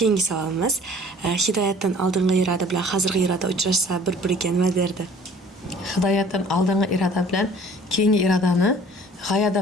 savolimiz, hidoyatdan oldingi iroda bilan hozirgi iroda uchrashsa bir-biriga nima derdi? Hidoyatdan oldingi iroda bilan keyingi irodani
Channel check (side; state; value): both; normal; correlation 0.52